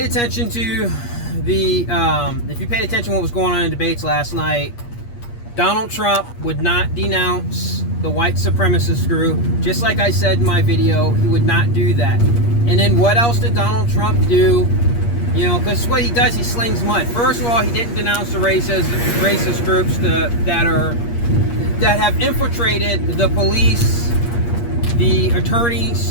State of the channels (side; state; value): right; late; 8.5 ms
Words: attention to what was going on in debates last night, Donald Trump would not denounce the white supremacist group. Just like I said in my video, he would not do that. And then what else did Donald Trump do? You know, because what he does, he slings mud. First of all, he didn't denounce the racist groups that have infiltrated the police, the